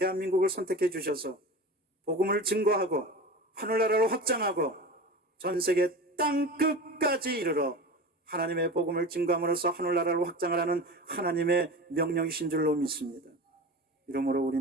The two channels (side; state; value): both; normal; correlation 0.31